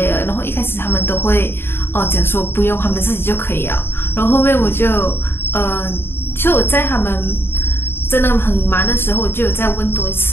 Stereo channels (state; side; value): late; right; 0.11 ms